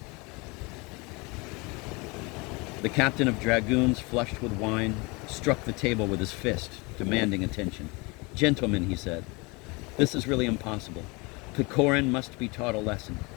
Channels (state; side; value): quieter; right; 27.1 dB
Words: The captain of dragoons, flushed with wine, struck the table with his fist, demanding attention. "Gentlemen," he said, "this is really impossible. Pechorin must be taught a lesson.